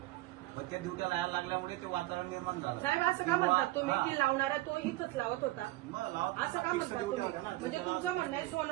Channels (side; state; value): left; quieter; 18.6 dB